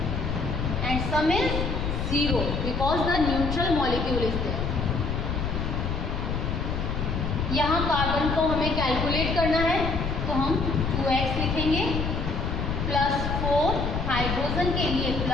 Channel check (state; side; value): noise; left; rumble, 2 dB below the sound